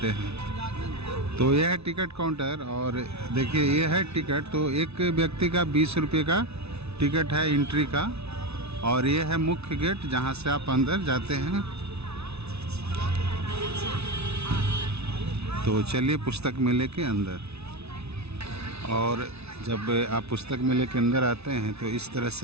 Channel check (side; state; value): left; late; 0.80 ms